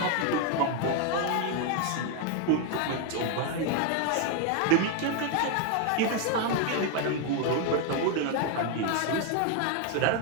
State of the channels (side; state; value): both; different; correlation 0.01